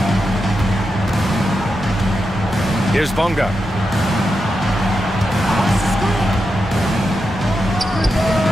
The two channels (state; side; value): normal; both; correlation 0.87